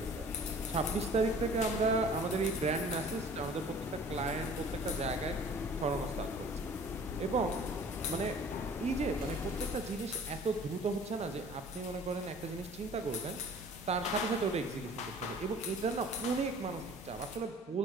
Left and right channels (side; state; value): both; normal; correlation 0.48